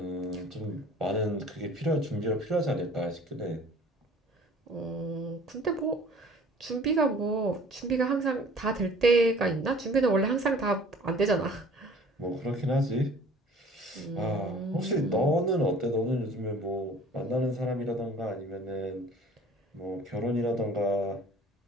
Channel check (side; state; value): both; normal; correlation 0.49